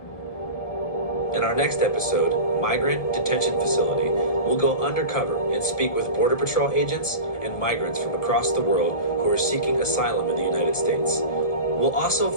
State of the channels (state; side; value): late; right; 1.7 ms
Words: In our next episode, Migrant Detention Facility, we'll go undercover and speak with Border Patrol agents and migrants from across the world who are seeking asylum in the United States. We'll also